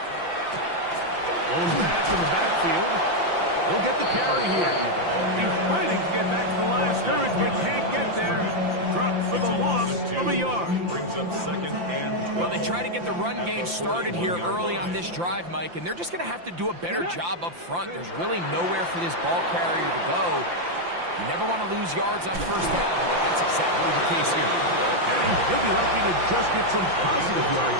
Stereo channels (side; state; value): left; late; 5.8 ms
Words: back in the backfield. He'll get the carry here. He's fighting to get back to the line of scrimmage, but can't get there. Dropped for the loss of a yard. Brings up 2nd and 12. Well, they try to get the run game started here early on this drive, Mike, and they're just going to have to do a better job up front. There's really nowhere for this ball carrier to go. You never want to lose yards on 1st down, but that's exactly the case here. And he'll be lucky to just get some positive